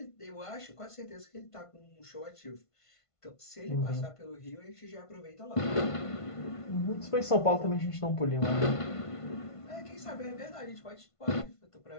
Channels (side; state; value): right; late; 1.5 ms